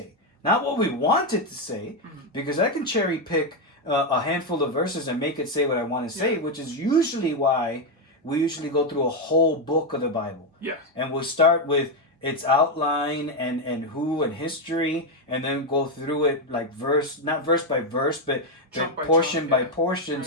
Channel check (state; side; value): normal; both; correlation 0.05